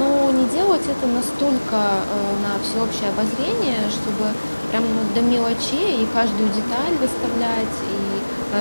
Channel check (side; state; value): both; inverted; correlation -1.00